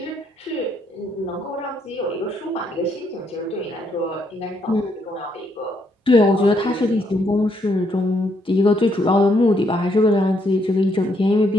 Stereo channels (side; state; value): both; normal; correlation 0.73